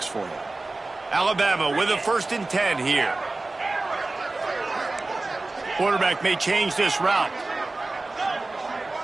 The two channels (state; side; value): quieter; left; 3.2 dB